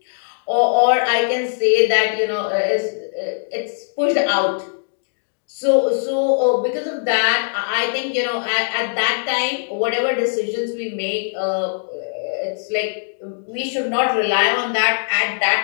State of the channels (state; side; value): silent; right; digital silence